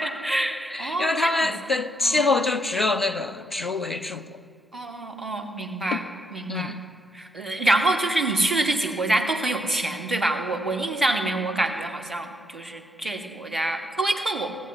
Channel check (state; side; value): normal; both; correlation 0.75